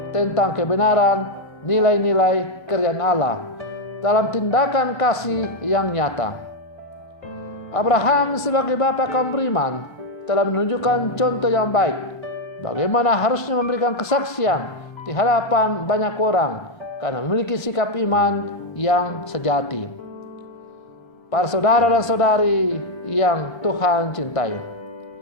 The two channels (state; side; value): late; right; 1.5 ms